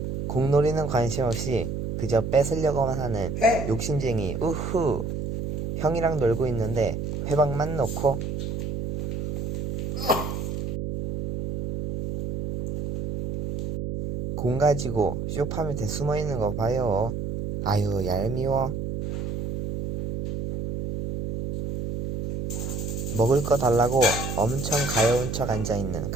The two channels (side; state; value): right; noise; hum, 4 dB below the sound